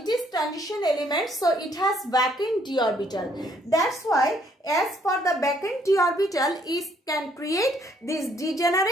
is transition element, so it has vacant d orbital. That's why as for the vacant d orbital, it can create this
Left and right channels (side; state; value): both; normal; correlation 0.67